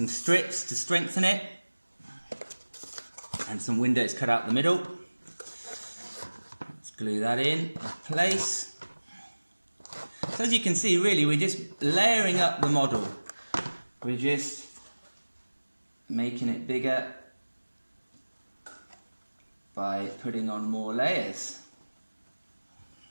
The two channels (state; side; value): inverted; both; correlation -1.00